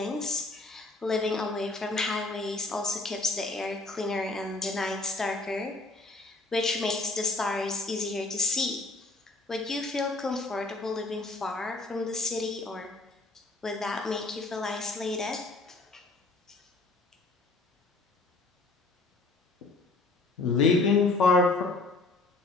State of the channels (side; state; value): right; quieter; 3.3 dB